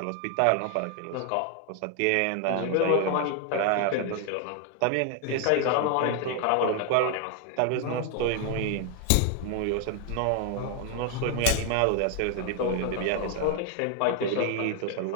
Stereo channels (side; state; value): both; different; correlation 0.00